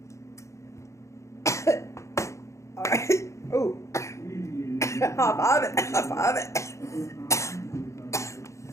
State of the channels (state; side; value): late; right; 0.14 ms